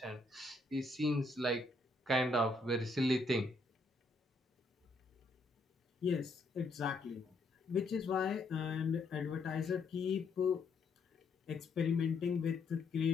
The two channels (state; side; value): quieter; right; 3.1 dB